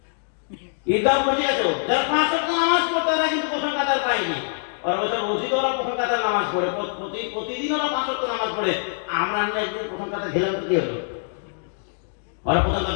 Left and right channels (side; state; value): right; silent; digital silence